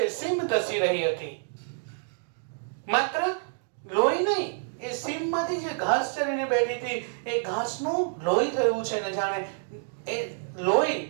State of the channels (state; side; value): silent; left; digital silence